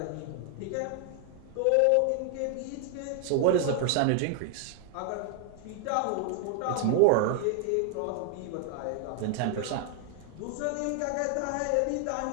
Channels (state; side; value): different; both; correlation 0.00